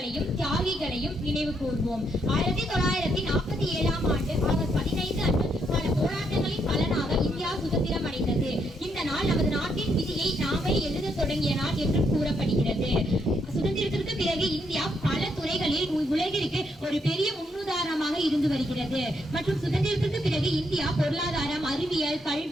தியாகிகளையும் நினைவு கூர்வோம். 1947ஆம் ஆண்டு ஆகஸ்ட் 15 அன்று பல போராட்டங்களின் பலனாக இந்தியா சுதந்திரம் அடைந்தது. இந்த நாள் நமது நாட்டின் விதியை நாமே எழுத தொடங்கிய நாள் என்று கூறப்படுகிறது. சுதந்திரத்திற்கு பிறகு இந்தியா பல துறைகளில் உலகிற்கு ஒரு பெரிய முன்னுதாரணமாக இருந்து வருகிறது. மற்றும் சுதந்திரத்திற்கு பிறகு இந்தியா பொருளாதாரம், அறிவியல்,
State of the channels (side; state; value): both; normal; correlation 0.76